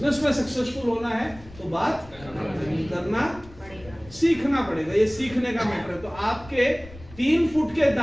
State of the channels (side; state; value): left; noise; rumble, 20 dB below the sound